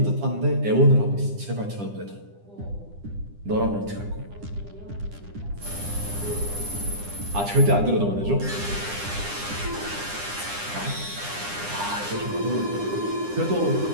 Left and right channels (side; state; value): left; late; 9.9 ms